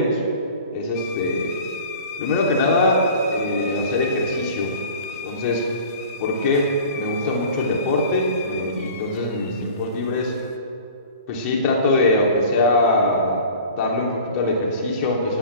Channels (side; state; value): both; inverted; correlation -0.42